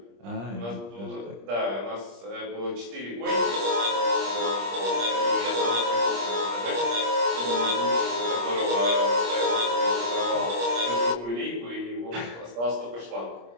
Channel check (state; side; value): late; left; 25 ms